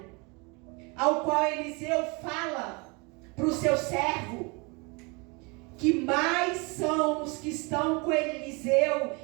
ao qual Eliseu fala para o seu servo, que mais são os que estão com Eliseu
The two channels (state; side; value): quieter; left; 29.3 dB